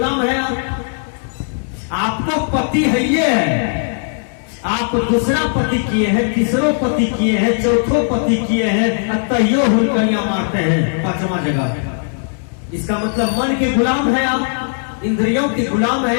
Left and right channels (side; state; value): right; silent; digital silence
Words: है आप। आपको पति है ये है, आप दूसरा पति किए हैं, तीसरो पति किए हैं, चौथो पति किए हैं, तैयो हुलकनिया मारते हैं 5वां जगह। इसका मतलब मन के गुलाम है आप, इंद्रियों के गुलाम